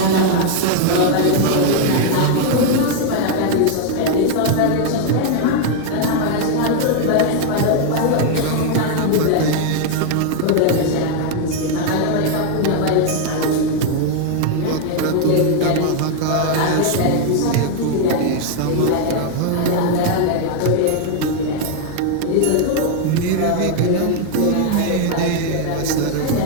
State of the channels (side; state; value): both; different; correlation 0.00